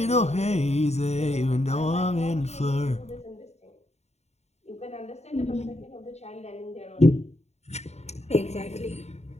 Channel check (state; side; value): late; right; 0.32 ms